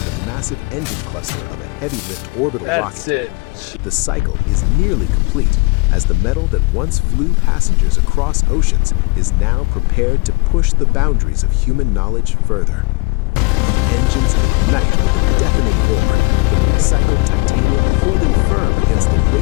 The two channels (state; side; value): quieter; right; 28.8 dB